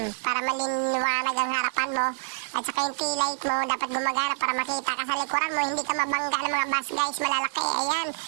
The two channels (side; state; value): left; silent; digital silence